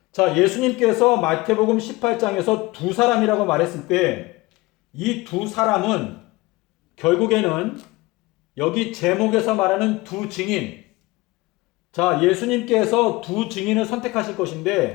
자, 예수님께서 마태복음 18장에서 두 사람이라고 말했을 때 이 두 사람은 결국에는 여기 제목에서 말하는 두 증인, 자, 예수님께서 두 증인을 선택하실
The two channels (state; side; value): quieter; right; 21.6 dB